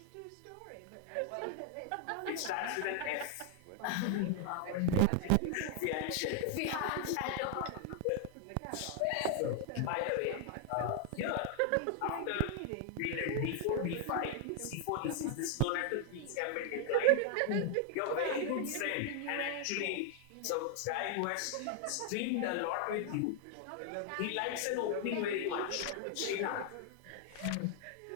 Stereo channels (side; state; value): both; different; correlation 0.00